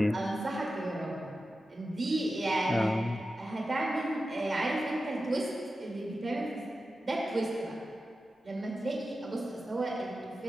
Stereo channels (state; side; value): normal; both; correlation 0.92